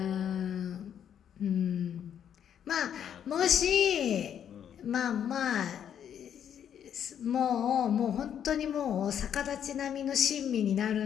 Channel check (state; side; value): quieter; right; 9.1 dB